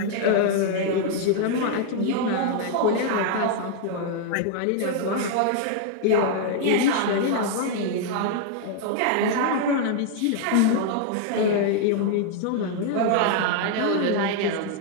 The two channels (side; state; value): both; different; correlation 0.00